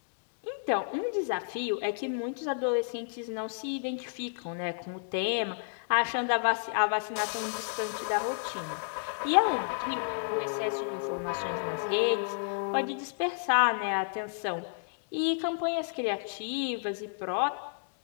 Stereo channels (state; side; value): silent; right; digital silence